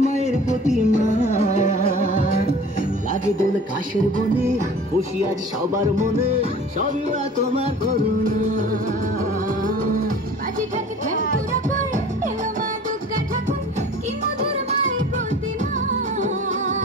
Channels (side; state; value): both; normal; correlation 0.44